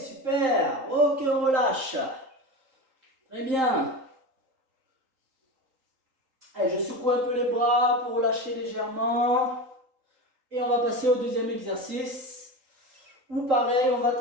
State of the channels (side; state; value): left; late; 3.8 ms